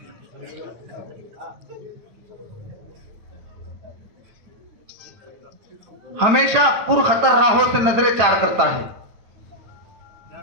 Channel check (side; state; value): left; late; 8.9 ms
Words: हमेशा पुरखतर राहों से नजरें चार करता है,